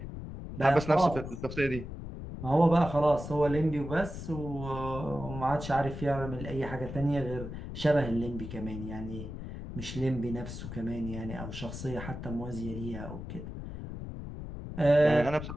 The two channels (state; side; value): noise; left; rumble, 9 dB below the sound